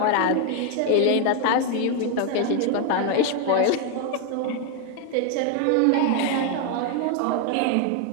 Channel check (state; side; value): different; both; correlation 0.01